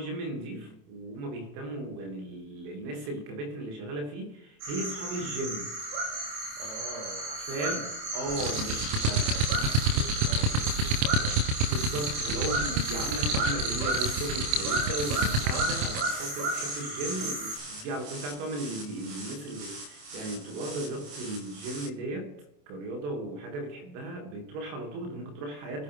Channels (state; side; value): late; left; 27 ms